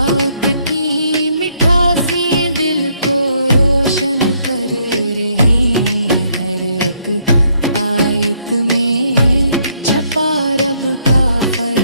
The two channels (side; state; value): both; inverted; correlation -0.71